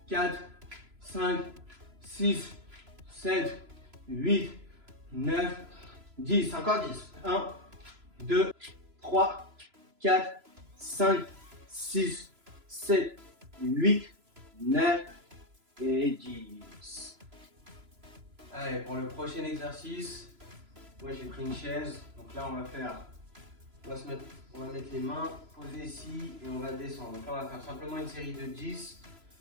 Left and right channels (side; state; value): left; late; 3.0 ms